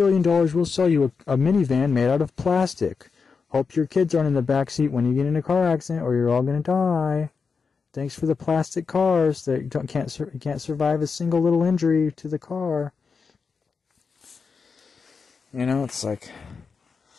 we'll sell you a minivan made out of plastic. Hope your kids aren't in the back seat when you get in a car accident, or you're all gonna die. Thanks for the plastic cars that can't survive a single little injury to the car. You know, it's like,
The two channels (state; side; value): quieter; right; 5.2 dB